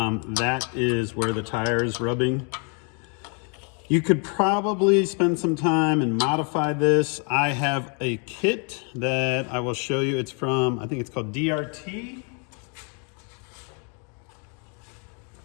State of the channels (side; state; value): right; quieter; 37.4 dB